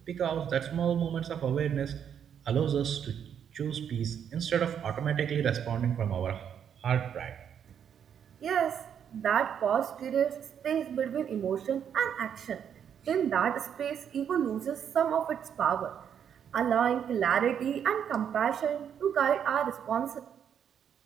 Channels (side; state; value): left; quieter; 8.4 dB